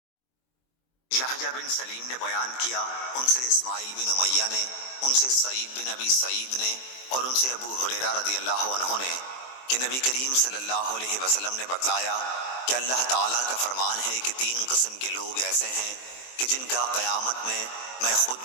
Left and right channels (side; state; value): right; late; 23 ms